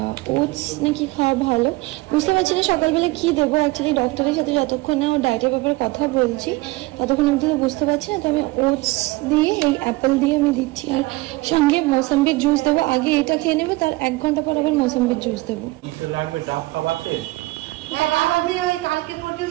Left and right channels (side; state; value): left; quieter; 21.3 dB